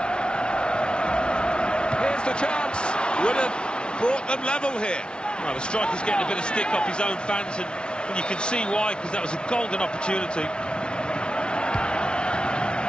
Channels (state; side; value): late; right; 0.056 ms